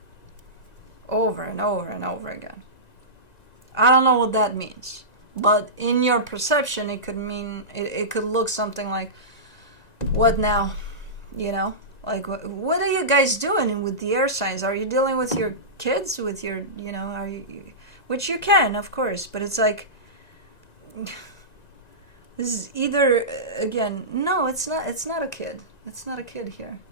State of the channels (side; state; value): right; late; 1.9 ms